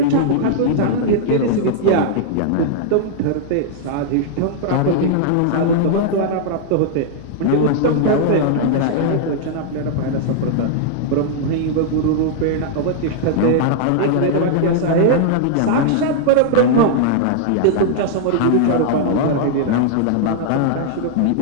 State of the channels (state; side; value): different; both; correlation -0.01